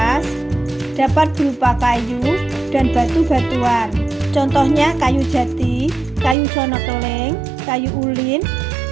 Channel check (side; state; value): left; drops out; at 6.4 s